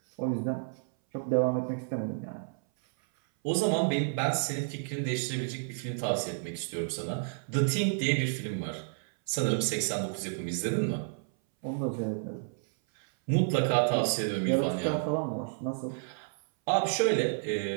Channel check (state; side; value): silent; left; 57 dB below the other